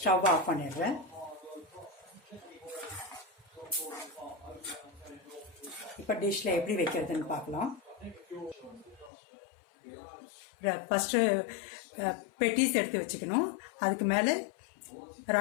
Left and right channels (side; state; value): right; drops out; at 9.1 s